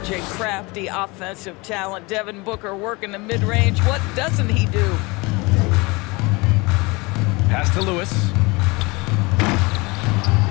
a crafty offensive talent. Devin Booker working the mid-range. What doesn't he do? Pass to Lewis.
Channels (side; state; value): right; quieter; 25.6 dB